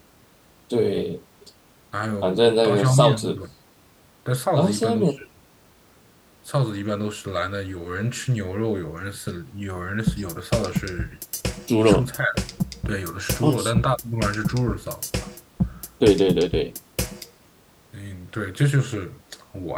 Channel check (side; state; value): both; identical; correlation 1.00